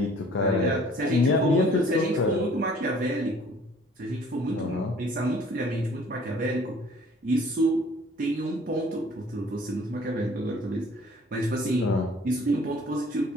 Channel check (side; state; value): both; normal; correlation 0.54